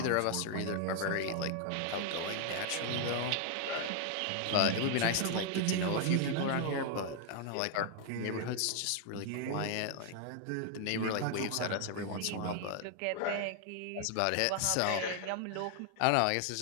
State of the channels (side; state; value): both; different; correlation 0.00